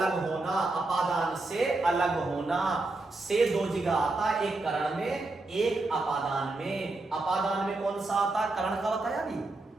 होना, अपादान से अलग होना, से दो जगह आता है, एक करण में एक अपादान में। अपादान में कौन सा आता है? करण का बताया अभी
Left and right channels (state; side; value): quieter; left; 3.1 dB